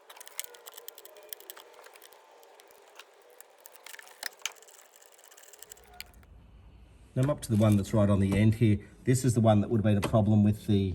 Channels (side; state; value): both; identical; correlation 1.00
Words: Now I'm up to the one that's right on the end here. This is the one that would have been a problem with the